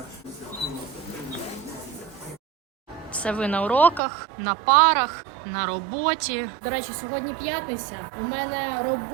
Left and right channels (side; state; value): left; drops out; at 4.0 s